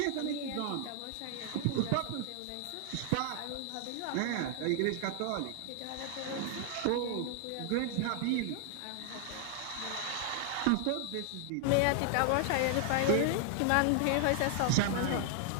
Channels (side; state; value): both; different; correlation 0.00